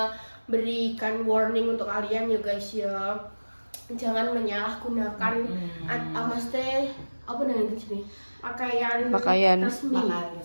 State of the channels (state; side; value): inverted; both; correlation -1.00